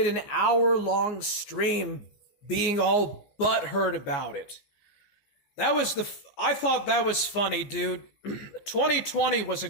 an hour-long stream being all butthurt about it. I thought that was funny, dude. 2020 was a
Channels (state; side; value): late; right; 14 ms